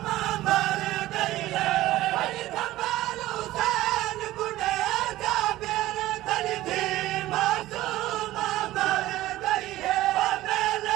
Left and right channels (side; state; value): left; quieter; 16.0 dB